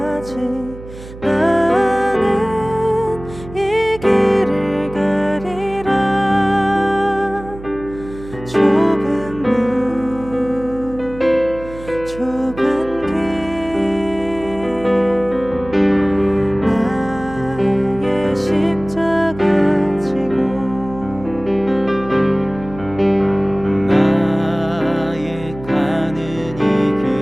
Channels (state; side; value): noise; right; hum, 15 dB below the sound